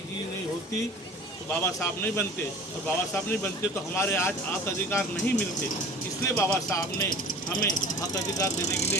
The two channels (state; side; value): normal; both; correlation 0.42